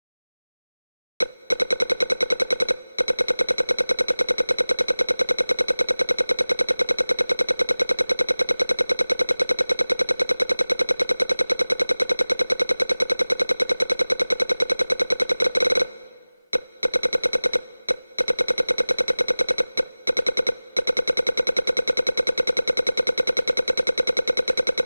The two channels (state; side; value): inverted; both; correlation -0.99